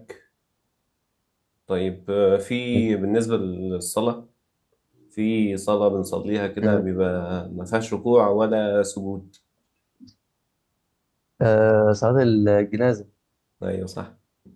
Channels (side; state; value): both; identical; correlation 1.00